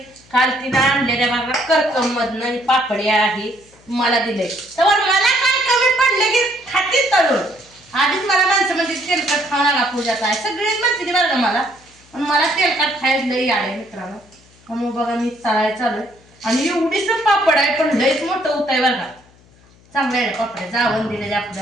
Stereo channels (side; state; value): left; noise; hum, 28 dB below the sound